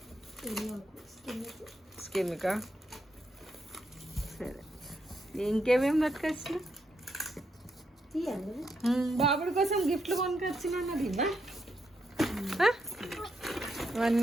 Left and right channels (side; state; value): both; normal; correlation 0.80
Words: స్కిన్కా సరే ఇంకేమేమి పట్టుకొచ్చిన బాబుడి కోసం గిఫ్ట్లు కొనుకొచ్చిన అన్నది